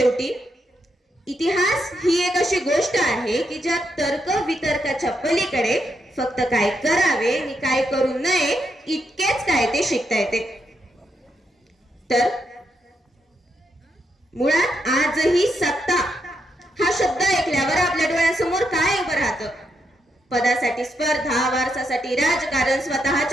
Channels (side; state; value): both; normal; correlation 0.81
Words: इतिहास ही एक अशी गोष्ट आहे की ज्या तर्क वितर्काच्या पलीकडे फक्त काय करावे आणि काय करू नये इतकेच काय ते शिकता येते. तर मुळात आजही सत्ता हा शब्द ऐकल्यावर आपल्या डोळ्यासमोर काय उभं राहतं? पदासाठी स्पर्धा, वारसासाठी राजकारण,